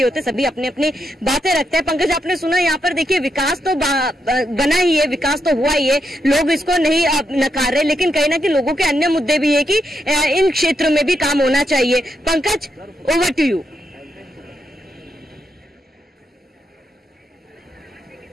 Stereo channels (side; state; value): both; normal; correlation 0.82